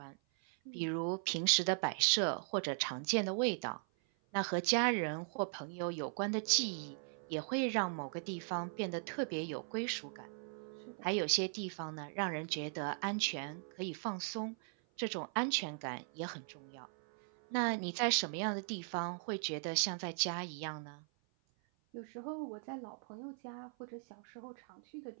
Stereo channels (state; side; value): silent; left; 52 dB below the other